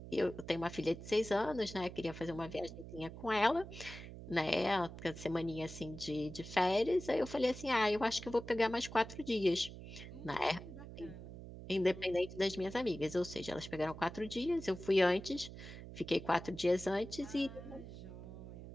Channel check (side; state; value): right; noise; hum, 12 dB below the sound